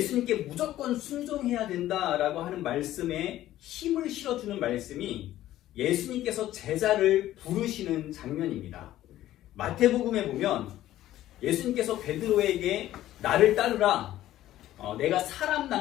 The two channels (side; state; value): right; quieter; 13.9 dB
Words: 무조건 순종해야 된다라고 하는 말씀에 힘을 실어주는 말씀이 예수님께서 제자를 부르시는 장면입니다. 마태복음에 보면 예수님께서 베드로에게 나를 따르라, 내가 사람